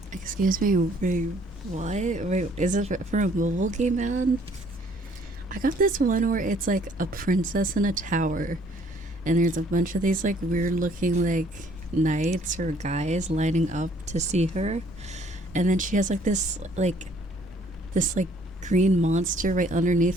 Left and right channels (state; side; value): normal; both; correlation 0.60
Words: Excuse me, wait, what? Wait, is it for a mobile game, man? I got this one where it's like a princess in a tower, and there's a bunch of these like weird looking like knights or guys lining up to see her, and then she has like this green monster right